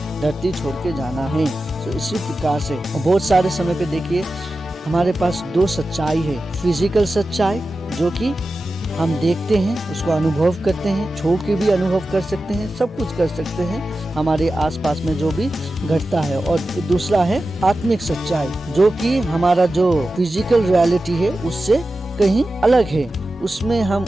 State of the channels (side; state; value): both; normal; correlation 0.93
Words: धरती छोड़ के जाना है। तो इसी प्रकार से बहुत सारे समय पे देखिए, हमारे पास 2 सच्चाई है। फिजिकल सच्चाई जो कि हम देखते हैं, उसको अनुभव करते हैं, छू के भी अनुभव कर सकते हैं, सब कुछ कर सकते हैं हमारे आसपास में जो भी घटता है। और दूसरा है आत्मिक सच्चाई, जो कि हमारा जो फिजिकल रियलिटी है उससे कहीं अलग है। उसमें